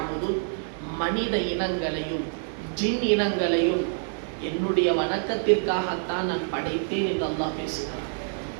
மனித இனங்களையும் ஜின் இனங்களையும் என்னுடைய வணக்கத்திற்காகத்தான் நான் படைத்தேன் என்று அல்லாஹ் பேசுகிறான்.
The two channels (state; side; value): silent; left; digital silence